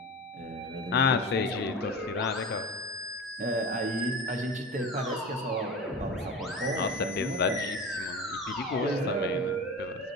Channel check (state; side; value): normal; both; correlation 0.29